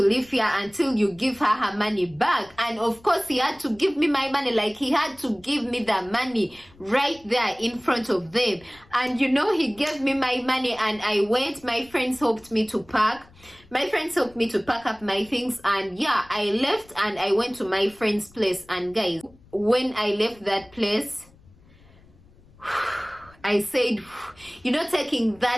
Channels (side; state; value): left; noise; rumble, 26 dB below the sound